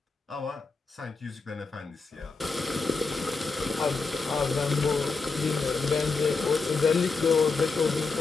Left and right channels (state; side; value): quieter; right; 4.3 dB